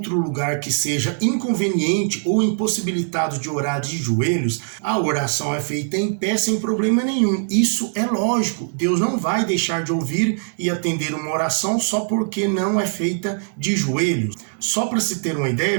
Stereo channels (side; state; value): left; silent; digital silence